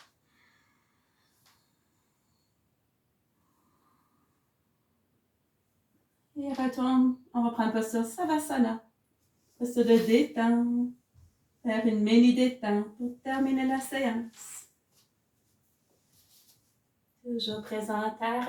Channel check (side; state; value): both; identical; correlation 1.00